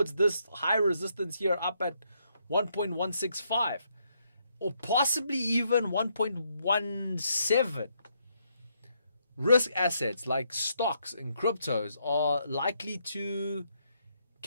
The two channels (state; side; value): inverted; both; correlation -0.76